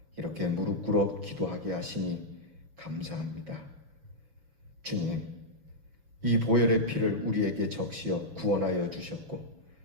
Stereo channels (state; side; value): late; left; 6.1 ms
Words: 이렇게 무릎 꿇어 기도하게 하시니 감사합니다. 주님, 이 보혈의 피를 우리에게 적시어 구원하여 주셨고